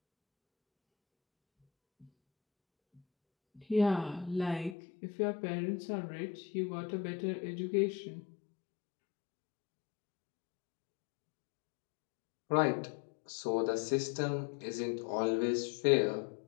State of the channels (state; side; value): drops out; right; at 4.8 s